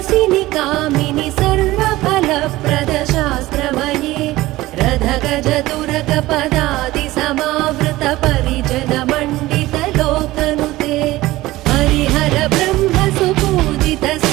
कामिनि सर्वफलप्रद शास्त्रमये रथगज तुरग पदादि समावृत परिजन मण्डित लोकनुते हरिहर ब्रह्म सुपूजित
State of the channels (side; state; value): left; quieter; 17.7 dB